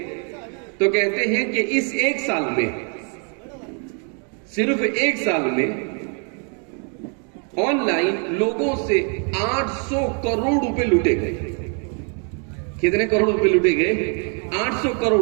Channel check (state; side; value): quieter; left; 39.6 dB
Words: تو کہتے ہیں کہ اس ایک سال میں، صرف ایک سال میں آن لائن لوگوں سے 800 کروڑ روپے لوٹے گئے۔ کتنے کروڑ روپے لوٹے گئے؟ 800 کروڑ